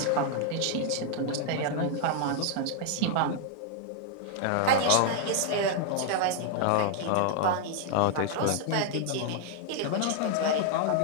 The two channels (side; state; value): both; different; correlation 0.00